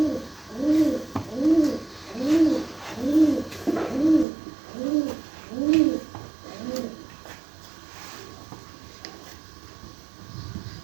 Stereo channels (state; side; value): drops out; left; at 4.2 s